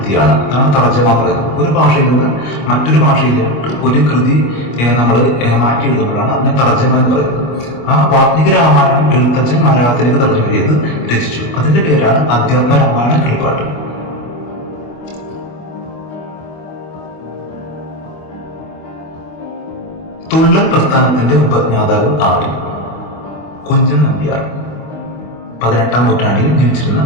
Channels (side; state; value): right; late; 25 ms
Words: അതാണ് തർജ്ജമ എന്ന് പറയുന്നത്. ഒരു ഭാഷയിൽ നിന്ന് മറ്റൊരു ഭാഷയിലോട്ട് ഒരു കൃതി നമ്മൾ മാറ്റി എഴുതുമ്പോഴാണ് അതിനെ തർജ്ജമ എന്ന് പറയുന്നത്. ആ വാൽമീകി രാമായണം എഴുത്തച്ഛൻ മലയാളത്തിലേക്ക് തർജ്ജമ ചെയ്ത് രചിച്ചു. അതിന്റെ പേരാണ് അധ്യാത്മരാമായണ കിളിപ്പാട്ട്. തുള്ളൽ പ്രസ്ഥാനത്തിന്റെ ഉപജ്ഞാതാവ് ആര്? കുഞ്ചൻ നമ്പ്യാർ. 18-ാം നൂറ്റാണ്ടിൽ ജീവിച്ചിരുന്ന